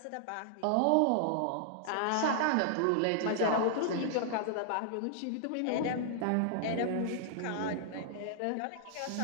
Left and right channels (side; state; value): both; different; correlation -0.01